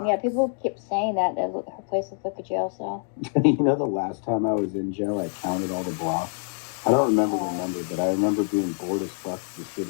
Yeah, people keep saying that her place looks like a jail cell. You know, the last time I was in jail, I counted all the blocks. I don't remember the number, but I remember being bored as fuck just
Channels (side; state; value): right; silent; 55 dB below the other